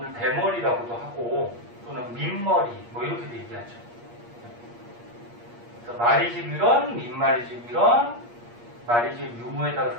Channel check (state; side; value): late; left; 8.5 ms